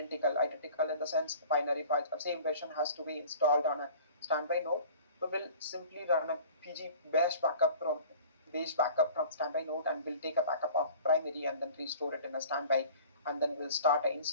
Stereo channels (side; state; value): both; inverted; correlation -0.45